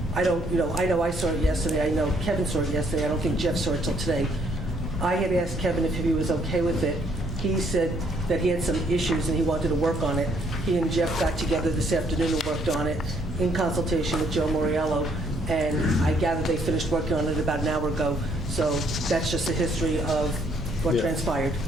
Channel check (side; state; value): both; normal; correlation 0.68